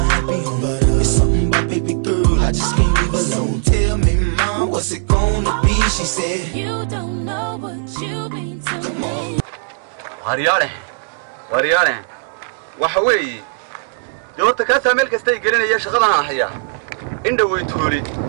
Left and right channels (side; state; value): left; silent; digital silence